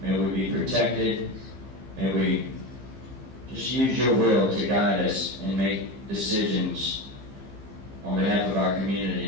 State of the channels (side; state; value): left; late; 15 ms